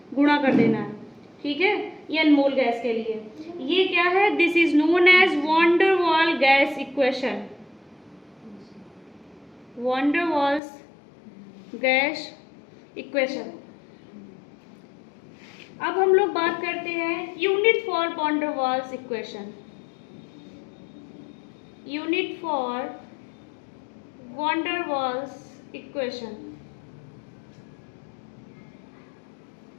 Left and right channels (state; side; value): drops out; right; at 10.6 s